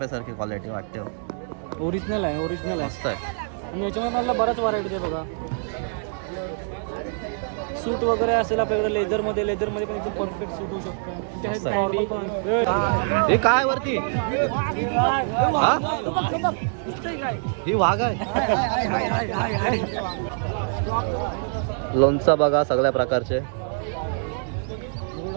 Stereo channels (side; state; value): left; silent; digital silence